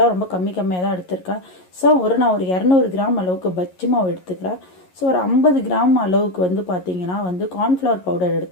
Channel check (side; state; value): right; late; 11 ms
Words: ரொம்ப கம்மியாக தான் எடுத்திருக்கேன். ஸோ நான் ஒரு 200 கிராம் அளவுக்கு பஜ்ஜி மாவு எடுத்துக்கிறேன். ஸோ ஒரு 50 கிராம் அளவுக்கு பார்த்தீங்கன்னா கார்ன்ஃப்ளவர் பவுடர்